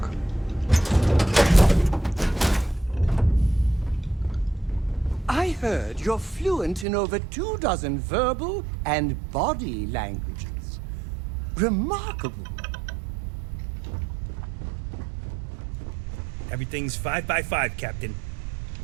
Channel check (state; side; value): drops out; left; at 6.9 s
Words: I heard you're fluent in over 24 verbal and body languages. Remarkable. Everything's 5 by 5, Captain.